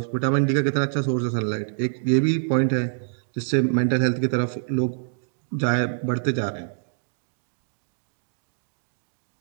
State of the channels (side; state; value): left; silent; digital silence